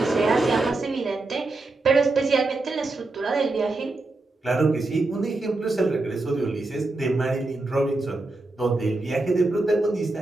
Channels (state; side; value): quieter; left; 3.1 dB